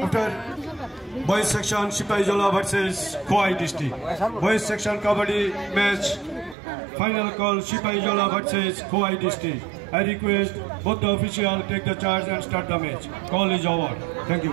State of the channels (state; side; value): drops out; left; at 6.6 s